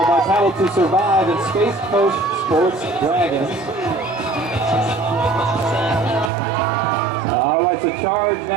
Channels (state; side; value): drops out; left; at 6.3 s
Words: by Paddle to Survive and Space Coast Sports Dragons. All right, so C.H.A.R.G.E